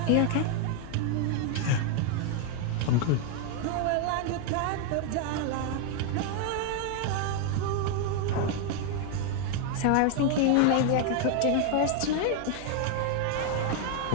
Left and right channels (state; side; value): different; both; correlation 0.00